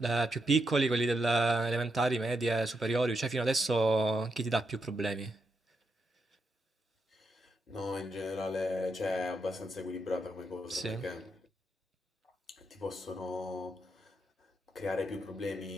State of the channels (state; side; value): normal; both; correlation 0.82